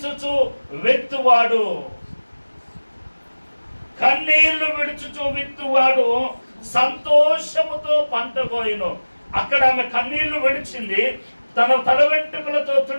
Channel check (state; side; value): inverted; both; correlation -1.00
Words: విత్తువాడు, కన్నీళ్లు విడుచుచు విత్తువాడు సంతోషముతో పంట కోయును. అక్కడ ఆమె కన్నీళ్లు విడిచింది, తన తల వెంట్రుకలతో